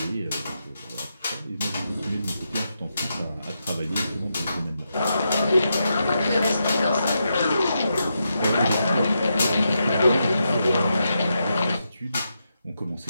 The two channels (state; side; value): inverted; both; correlation -0.85